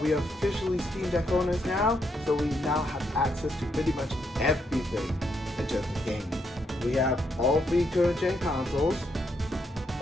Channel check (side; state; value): both; normal; correlation 0.77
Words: we are officially Steam Deck owners now, so we now have access to pretty much everything in terms of gaming. We have all 3 current gen consoles.